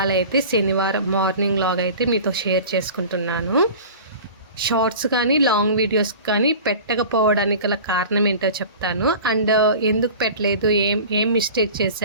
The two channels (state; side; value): inverted; both; correlation -0.39